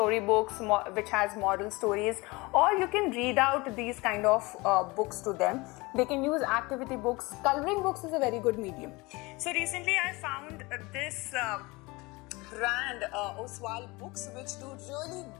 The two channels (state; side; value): quieter; right; 23.9 dB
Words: which has moral stories, or you can read out these kind of books to them. They can use activity books. Coloring books is a very good medium. So recently I found this brand, Oswald Books, which do really